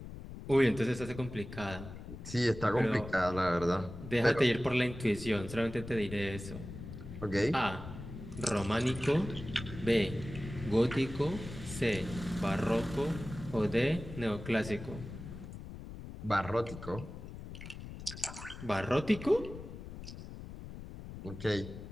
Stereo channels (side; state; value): left; noise; rumble, 11 dB below the sound